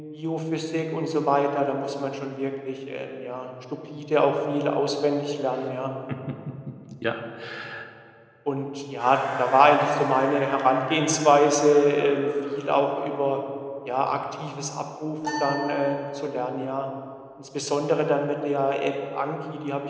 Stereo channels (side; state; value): both; identical; correlation 1.00